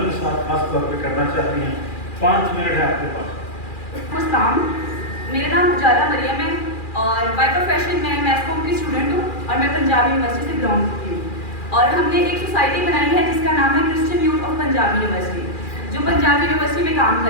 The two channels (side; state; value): right; late; 2.4 ms